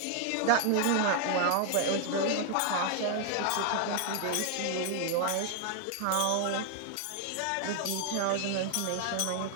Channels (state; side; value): different; both; correlation 0.00